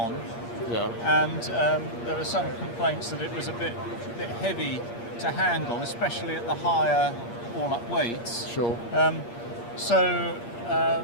Yeah. And there were some complaints that it was a bit heavy to handle, especially at the higher all-up weights. Sure. So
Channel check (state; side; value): late; right; 8.5 ms